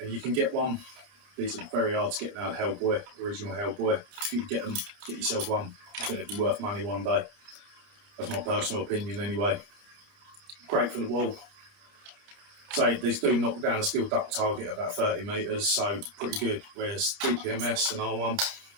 you can get one. These are very hard to get now. Hellboy, original Hellboy. If you can get them, get yourself one. I think they'd be worth money one day. That's my personal opinion anyway. Great for the wall. So these do knock down a steel duct target about 30 metres, so pretty good. Whereas dpms and R1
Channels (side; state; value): left; late; 30 ms